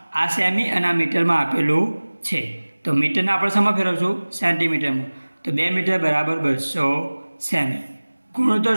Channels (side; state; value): both; inverted; correlation -1.00